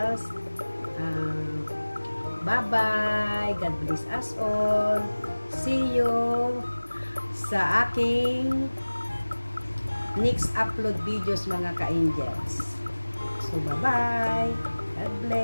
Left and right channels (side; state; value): both; inverted; correlation -1.00